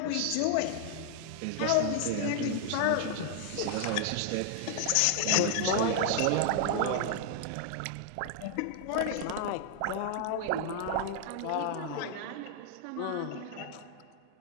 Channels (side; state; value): both; different; correlation 0.00